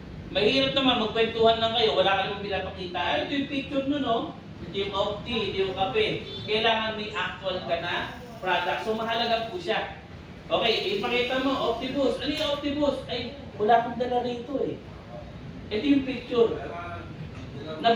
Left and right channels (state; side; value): identical; both; correlation 1.00